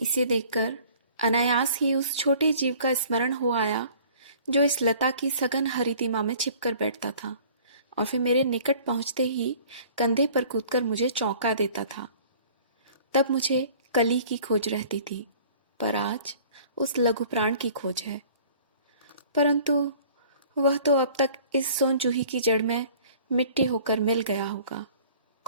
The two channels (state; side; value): inverted; both; correlation -0.50